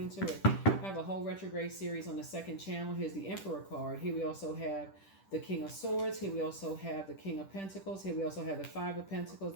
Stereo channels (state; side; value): late; right; 10 ms